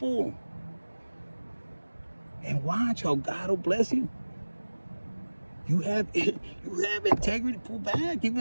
And watch how God will bless you. You have integrity. Pull back,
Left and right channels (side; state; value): both; inverted; correlation -1.00